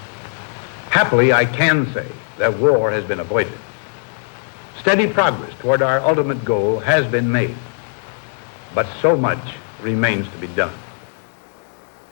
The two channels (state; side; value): silent; right; digital silence